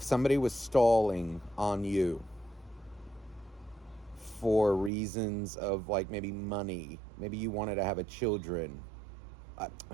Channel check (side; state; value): left; drops out; at 4.9 s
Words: somebody was stalling on you for reasons of like maybe money, maybe you wanted to have children.